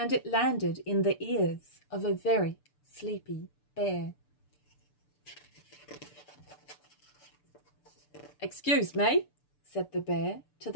it landed in the ears of a very sleepy bear. "Excuse me," said the bear to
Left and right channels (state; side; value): late; right; 6.8 ms